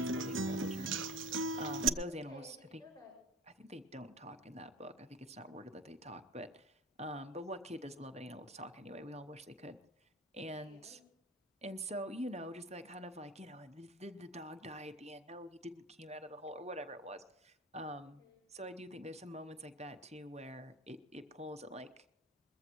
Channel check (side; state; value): both; normal; correlation 0.34